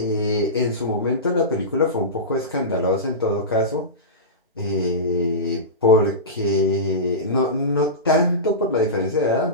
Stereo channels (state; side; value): normal; both; correlation -0.19